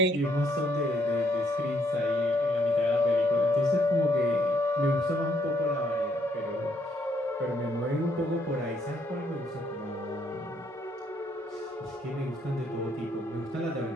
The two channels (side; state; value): both; normal; correlation 0.70